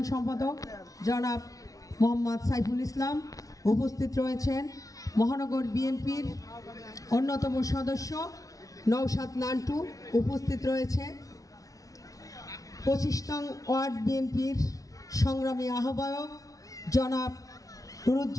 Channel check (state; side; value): late; right; 0.17 ms